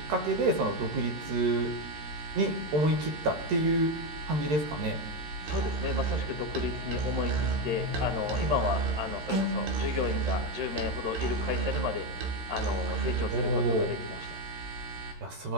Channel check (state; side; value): late; left; 13 ms